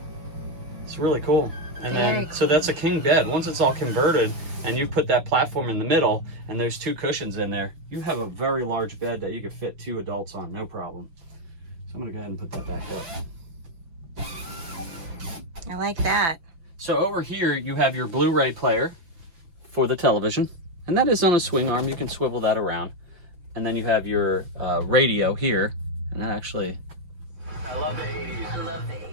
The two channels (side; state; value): left; late; 5.9 ms